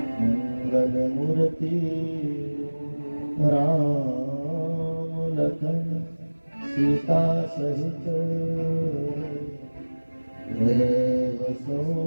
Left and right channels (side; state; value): both; inverted; correlation -1.00